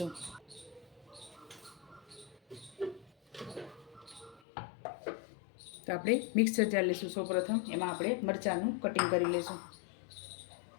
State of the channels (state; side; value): drops out; right; at 4.4 s